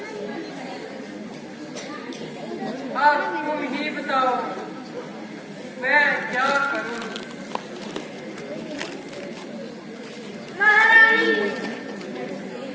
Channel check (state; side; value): identical; both; correlation 1.00